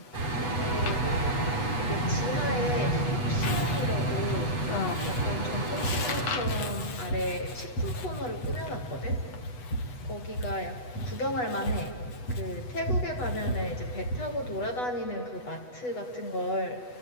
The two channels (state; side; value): late; right; 8.1 ms